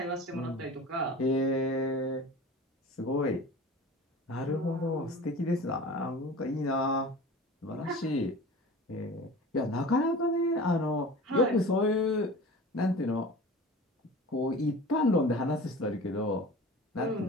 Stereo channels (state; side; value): normal; both; correlation 0.37